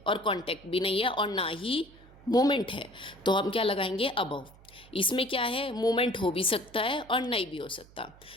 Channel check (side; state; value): right; noise; hum, 24 dB below the sound